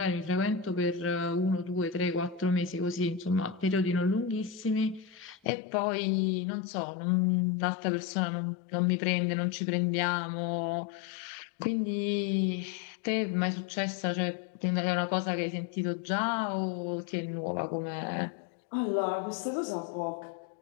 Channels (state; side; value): drops out; right; at 5.5 s